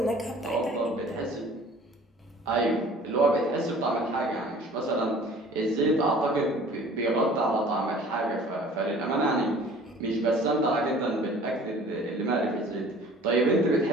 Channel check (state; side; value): normal; both; correlation 0.49